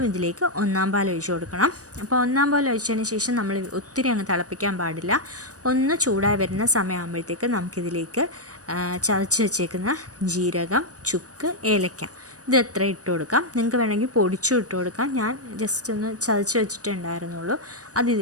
ഇതിലേക്ക് ഒന്നാം പാൽ ഒഴിച്ച് കൊടുക്കണം. അപ്പോൾ ഒന്നാം പാൽ ഒഴിച്ചതിന് ശേഷം നമ്മൾ ഒത്തിരി അങ്ങ് തിളപ്പിക്കാൻ പാടില്ല. ഒന്ന് ചൂടായി വരുന്ന സമയമാകുമ്പോഴത്തേക്ക് നമുക്കിതിലേക്ക് ചതച്ച് വെച്ചേക്കുന്ന ജീരകം, ചുക്ക്, ഏലക്ക ഇത് എത്ര ഇട്ട് കൊടുക്കാം. നിങ്ങൾക്ക് വേണമെങ്കിൽ പൊടിച്ചും ഇട്ട് കൊടുക്കാം. ഞാൻ ജസ്റ്റ് ഒന്ന് ചതച്ച് വെച്ചിട്ടേ ഉണ്ടായിരുന്നുള്ളൂ. അത്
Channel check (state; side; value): late; left; 0.66 ms